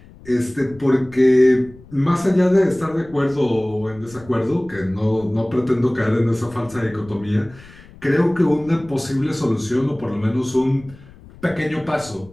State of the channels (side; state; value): left; noise; rumble, 21 dB below the sound